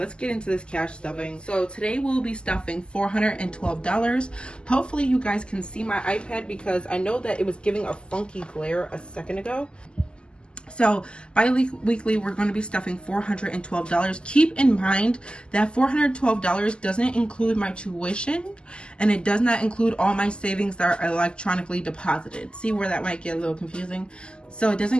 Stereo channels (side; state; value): right; late; 0.050 ms